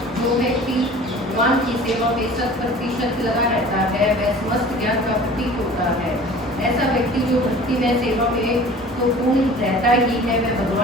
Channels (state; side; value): normal; both; correlation 0.44